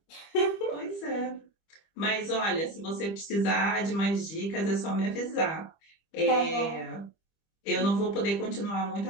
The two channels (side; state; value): right; late; 25 ms